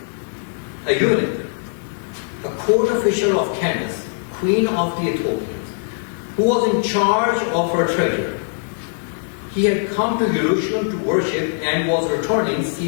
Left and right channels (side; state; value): right; silent; 65 dB below the other